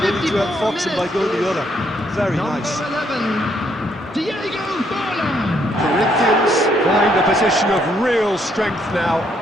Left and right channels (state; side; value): normal; both; correlation 0.71